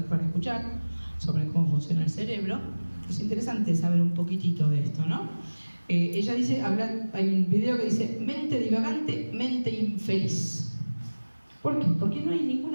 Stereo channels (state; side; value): inverted; both; correlation -1.00